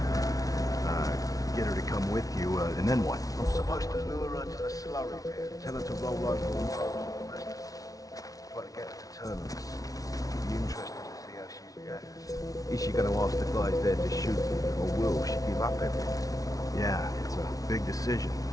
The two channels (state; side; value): late; right; 0.18 ms